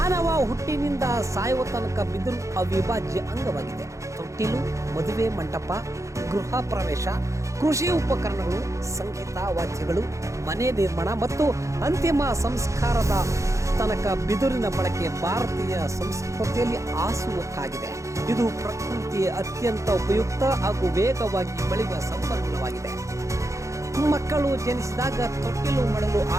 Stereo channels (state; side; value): late; left; 0.15 ms